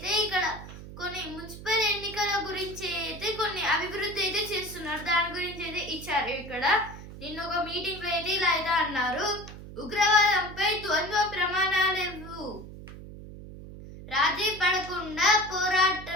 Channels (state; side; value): noise; right; hum, 14 dB below the sound